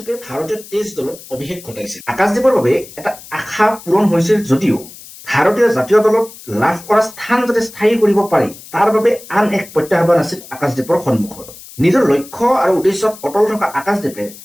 ভাৰতীয় টেষ্ট দলত অভিষেক ঘটাইছিল। আকাশদ্বীপৰ বাবে এটা আশা পূৰণ হৈছিল যদিও ভাৰতীয় জাতীয় দলত লাভ কৰা স্থান যাতে স্থায়ী কৰিব পাৰি তাৰ বাবে আন এক প্ৰত্যাহ্বান আছিল আকাশদ্বীপৰ সন্মুখত। নিজৰ লক্ষ্য আৰু উদ্দেশ্যত অটল থকা আকাশদ্বীপে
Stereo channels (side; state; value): left; noise; hiss, 18 dB below the sound